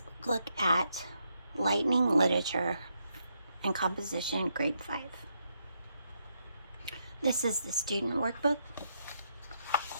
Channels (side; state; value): both; inverted; correlation -0.79